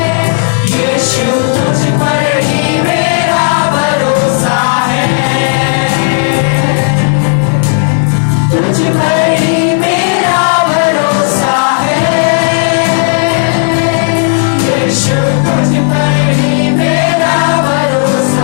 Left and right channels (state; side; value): silent; right; 63 dB below the other